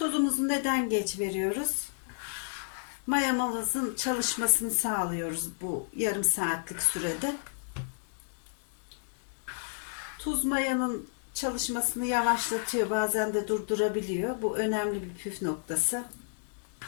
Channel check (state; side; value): silent; right; digital silence